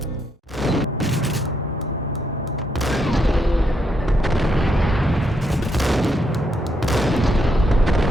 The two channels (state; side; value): normal; both; correlation 0.78